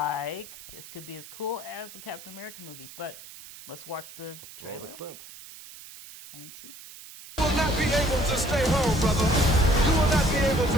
this could be as cool as the Captain America movies, but let's watch the trailer. Roll the clip. And see. You will not be able to stay home, brother. You will not be able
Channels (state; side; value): noise; right; hiss, 16 dB below the sound